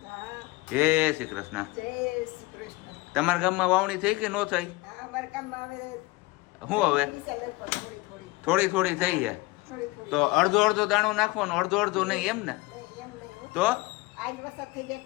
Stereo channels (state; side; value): quieter; right; 22.0 dB